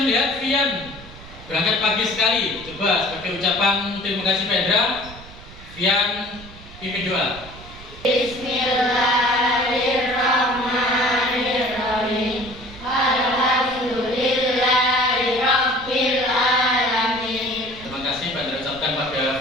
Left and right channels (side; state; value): right; noise; rumble, 17 dB below the sound